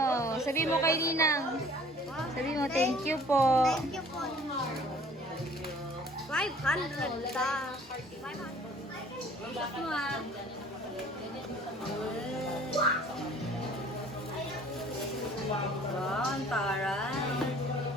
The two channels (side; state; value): both; normal; correlation 0.52